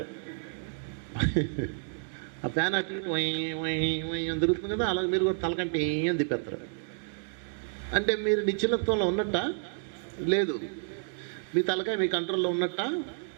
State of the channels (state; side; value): silent; left; digital silence